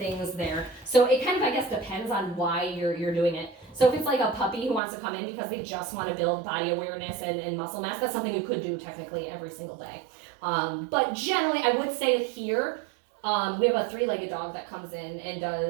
there. So it kind of, I guess, depends on why you're doing it. So if it's like a puppy who wants to come in because they just want to build body awareness and muscle mass, that's something you could do technically every single day. But generally, I would say here, we have a 3-legged dog that comes in and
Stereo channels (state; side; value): drops out; left; at 4.8 s